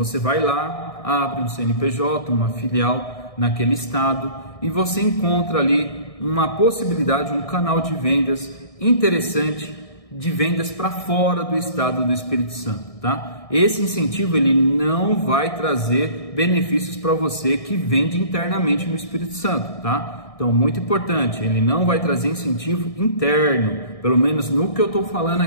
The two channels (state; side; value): late; right; 1.6 ms